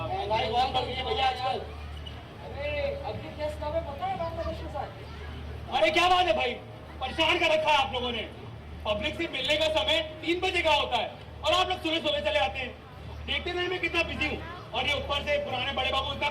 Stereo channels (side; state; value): both; identical; correlation 1.00